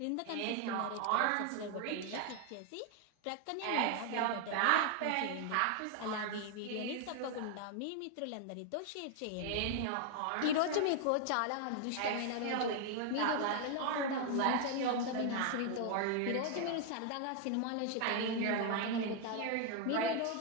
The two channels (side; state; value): both; different; correlation 0.00